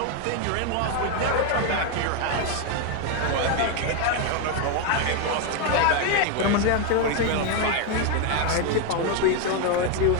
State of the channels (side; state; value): both; different; correlation 0.02